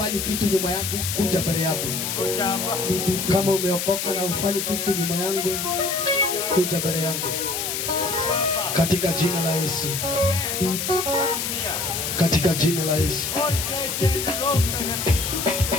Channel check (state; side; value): noise; left; hiss, 2 dB below the sound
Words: kitu nyuma yangu, kuja mbele yangu. Kama umeokoka na hufanyi kitu nyuma yangu, kuja mbele yangu. Katika jina la Yesu. Katika jina la Yesu.